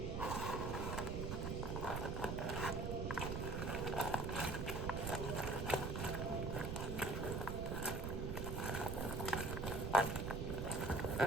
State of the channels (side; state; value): right; noise; rumble, 2 dB below the sound